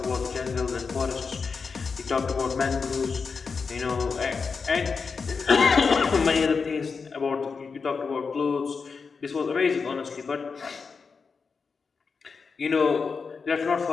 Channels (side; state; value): right; quieter; 5.1 dB